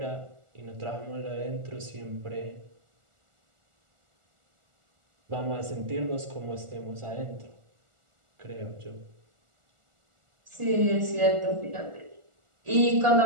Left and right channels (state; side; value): late; left; 1.4 ms